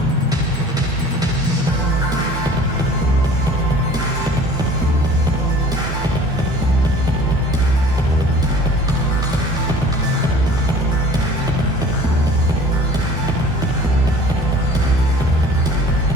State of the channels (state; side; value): normal; both; correlation 0.47